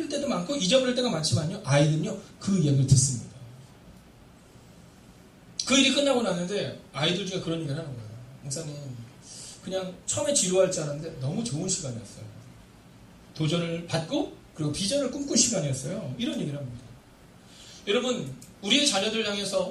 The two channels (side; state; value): both; identical; correlation 1.00